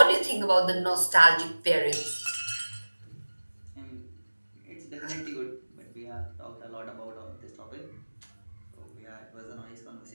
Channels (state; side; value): inverted; both; correlation -1.00